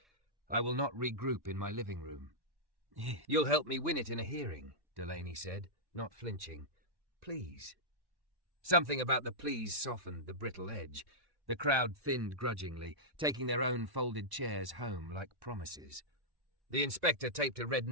I will not regroup in my living room. You'll help me win it in a hearing, Delaney said, not flinching. Please. Something about the please softened the brittle edge. The crowd thinned grudgingly, taking their own folded chairs home like promises. The inspector taped a red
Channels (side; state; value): left; late; 1.2 ms